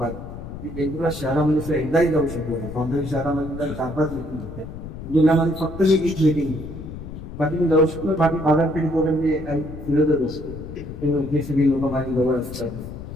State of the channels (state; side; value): noise; left; rumble, 11 dB below the sound